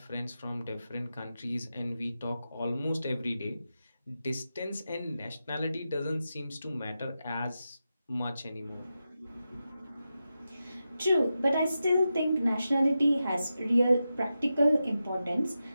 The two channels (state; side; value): inverted; both; correlation -0.90